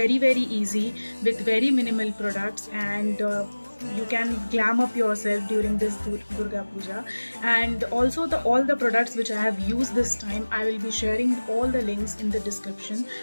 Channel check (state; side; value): inverted; both; correlation -1.00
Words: easy with very minimal products, and you can glam up yourself during this Durga Puja. And also all the products which I have used this time, I will be sharing all the links in the description,